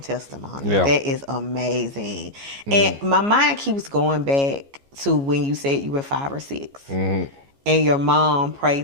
Yeah. That is amazing. And my mind keeps going back to when you said you were 5 or 6 and your mom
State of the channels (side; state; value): left; late; 14 ms